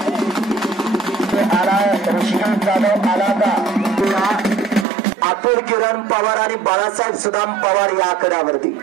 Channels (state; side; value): drops out; left; at 4.9 s